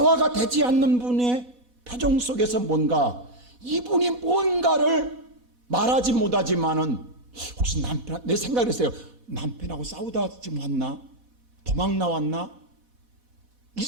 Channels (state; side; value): late; left; 4.1 ms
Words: 되지 않는 분의 표정 속에서 뭔가 이분이 뭔가를 말하지 못하지만은 혹시 남편, 내 생각을 했어요. 남편하고 싸우다 지금 왔나? 도망 나왔나? 이